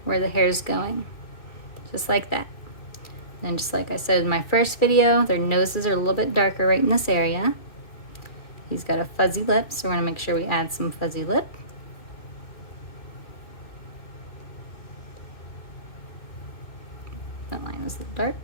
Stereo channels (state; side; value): late; right; 2.6 ms